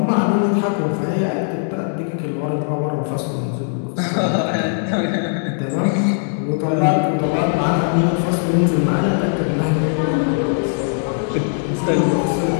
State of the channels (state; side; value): silent; right; digital silence